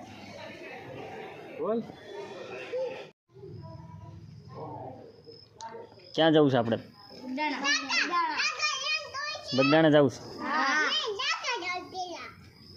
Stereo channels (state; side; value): identical; both; correlation 1.00